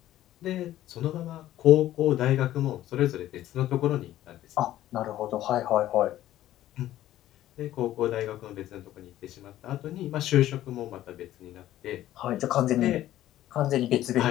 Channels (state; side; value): quieter; right; 13.6 dB